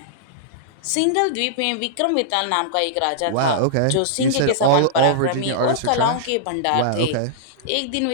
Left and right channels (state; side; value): different; both; correlation -0.02